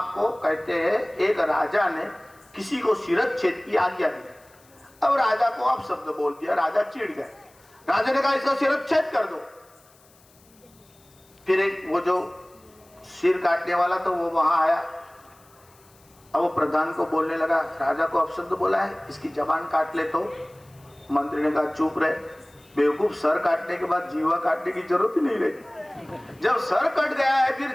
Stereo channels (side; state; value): left; noise; hiss, 29 dB below the sound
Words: कहते हैं एक राजा ने किसी को शिरच्छेद की आज्ञा दी, अब राजा को आप शब्द बोल दिया, राजा चिढ़ गए। राजा ने कहा इसका शिरच्छेद कर दो। फिर एक वो जो सिर काटने वाला तो वो वहां आया, अब वो प्रधान को बोलने लगा, राजा को अपशब्द बोला है, इसकी जबान काट ले। तो मंत्री ने कहा चुप रहे, बेवकूफ, सर काटने के बाद जीवा काटने की जरूरत ही नहीं रहती। जब सर कट गया है फिर